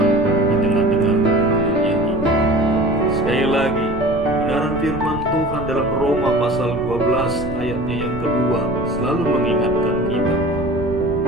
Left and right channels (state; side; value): noise; right; rumble, 11 dB below the sound